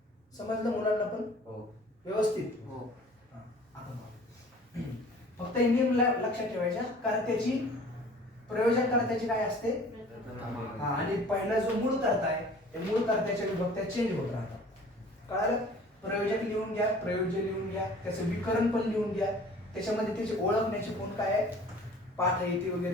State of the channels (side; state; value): both; normal; correlation 0.48